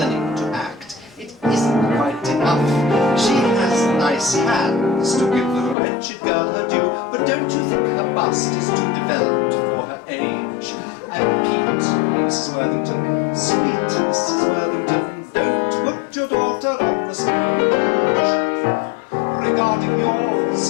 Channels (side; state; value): right; drops out; at 5.8 s